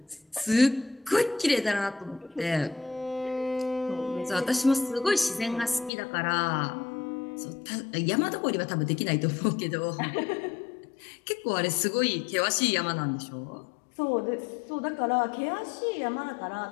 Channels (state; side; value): drops out; right; at 5.9 s